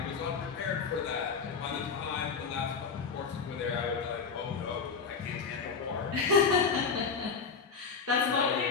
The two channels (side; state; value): right; quieter; 5.5 dB